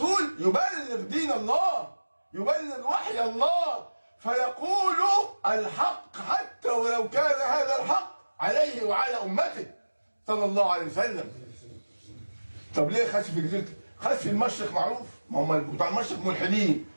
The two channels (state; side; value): inverted; both; correlation -1.00